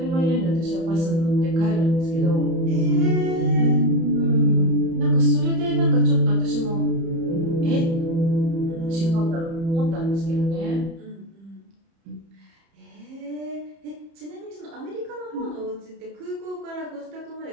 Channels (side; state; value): left; late; 30 ms